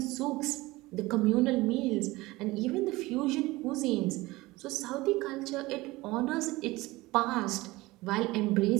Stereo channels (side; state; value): left; quieter; 20.3 dB